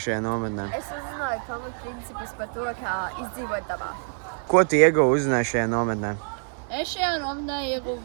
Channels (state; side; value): silent; left; 61 dB below the other